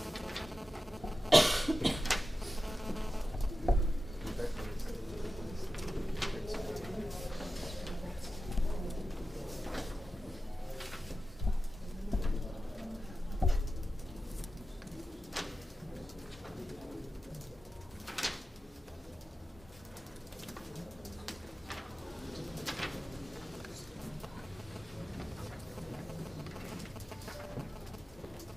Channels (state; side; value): normal; both; correlation 0.93